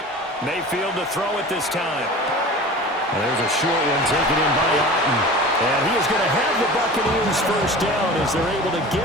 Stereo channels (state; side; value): normal; both; correlation 0.37